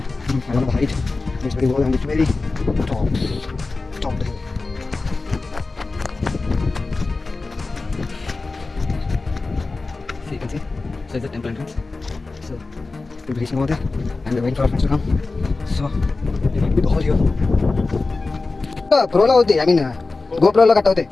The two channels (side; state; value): right; quieter; 3.6 dB